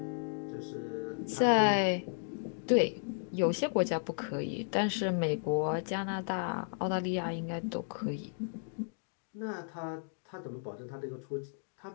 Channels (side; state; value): right; silent; digital silence